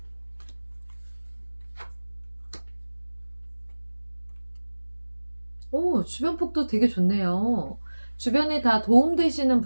오, 주변복도 되게 좋네요. 주변에 다 도움되시는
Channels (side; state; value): both; inverted; correlation -1.00